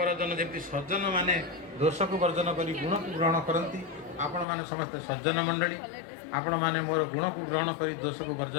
ଯେମିତି ସଜ୍ଜନମାନେ ଦୋଷକୁ ବର୍ଜନ କରି ଗୁଣକୁ ଗ୍ରହଣ କରନ୍ତି, ଆପଣମାନେ ସମସ୍ତେ ସଜ୍ଜନ ମଣ୍ଡଳୀ, ଆପଣମାନେ ମୋର ଗୁଣକୁ ଗ୍ରହଣ କରି ଦୋଷକୁ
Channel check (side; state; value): right; drops out; at 4.5 s